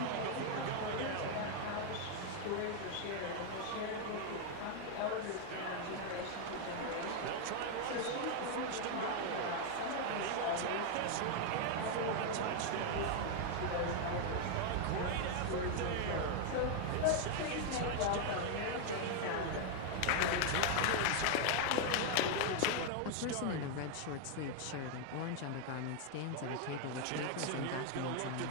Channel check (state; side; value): different; both; correlation 0.00